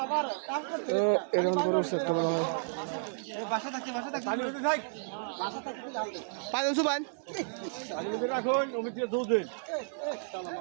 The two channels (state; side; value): silent; left; digital silence